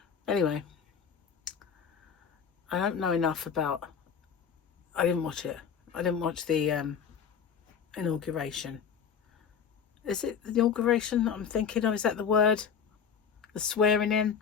Anyway, I don't know enough about. I didn't watch it. I didn't watch the inauguration. Is it the inauguration that I'm thinking of? Is that the word? The swearing in?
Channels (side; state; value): right; quieter; 6.9 dB